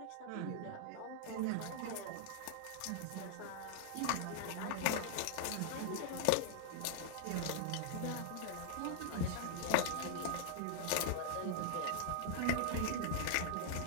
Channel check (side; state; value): both; different; correlation -0.01